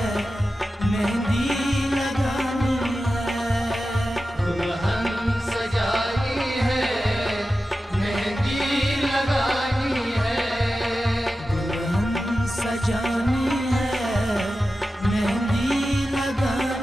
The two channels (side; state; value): both; normal; correlation 0.93